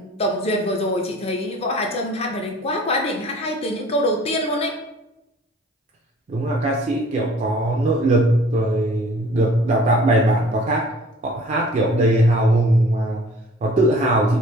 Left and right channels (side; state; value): both; normal; correlation 0.50